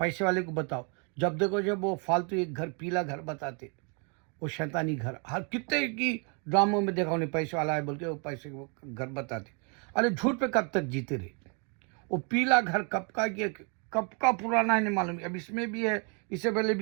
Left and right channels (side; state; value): left; quieter; 36.4 dB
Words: वाले को बताओ, जब देखो जब वो फालतू एक घर, पीला घर बताते, वो शैतानी घर, हर कितने की ड्रामों में देखा उन्हें पैसे वाला है बोल के वो पैसे वो घर बताते। अरे झूठ पे कब तक जीते रहे? वो पीला घर कब का पुराना है नहीं मालूम, अब इसमें भी है, इससे पहले